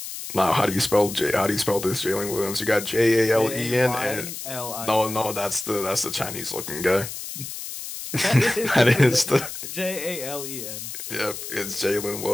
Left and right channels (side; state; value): left; noise; hiss, 9 dB below the sound